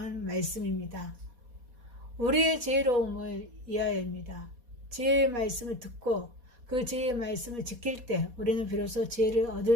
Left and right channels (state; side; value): late; left; 4.2 ms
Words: 말씀입니다. 우리의 지혜로움을 이하여입니다. 지혜의 말씀을 듣고 그 지혜의 말씀을 지킬 때 우리는 비로소 지혜를